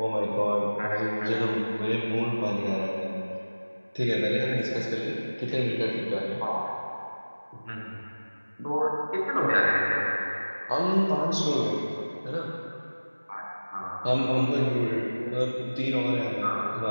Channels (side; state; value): both; inverted; correlation -1.00